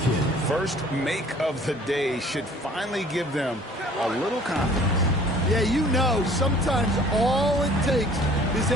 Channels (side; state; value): both; normal; correlation 0.52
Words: First make of the day should finally give them a little confidence. Yeah, you know, sometimes all it takes is